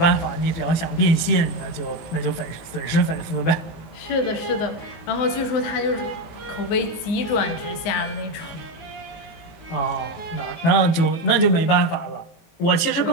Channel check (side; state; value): right; late; 18 ms